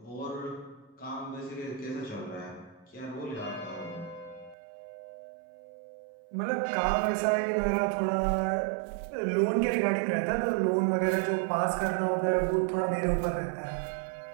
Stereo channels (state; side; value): drops out; left; at 4.5 s